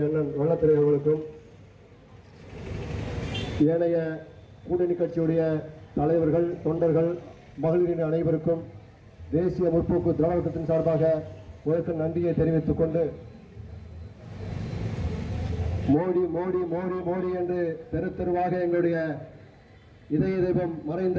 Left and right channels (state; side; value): identical; both; correlation 1.00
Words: அண்ணன் வெள்ளத்திரை அவர்களுக்கும் ஏனைய கூட்டணி கட்சியுடைய தலைவர்கள் தொண்டர்கள் மகளிரின் அனைவருக்கும் தேசிய முற்போக்கு திராவிடத்தின் சார்பாக உங்களுக்கு நன்றியை தெரிவித்துக் கொண்டு மோடி மோடி மோடி மோடி என்று தெரு தெருவாக எங்களுடைய இதய தெய்வம்